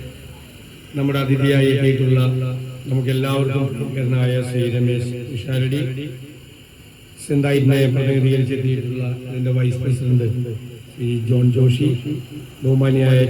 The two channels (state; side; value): identical; both; correlation 1.00